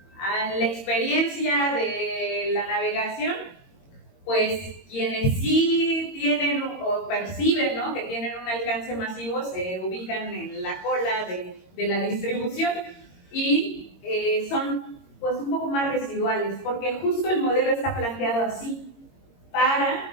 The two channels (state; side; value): late; right; 22 ms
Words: A la experiencia de la navegación, pues quienes sí tienen o perciben, ¿no?, que tienen un alcance masivo se ubican en la cola de la distribución y son pues un poco más residuales, porque justo el modelo está planteado así, para